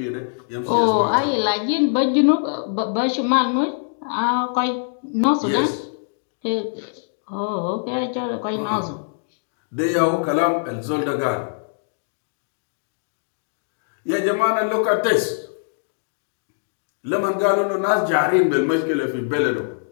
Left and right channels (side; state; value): right; silent; digital silence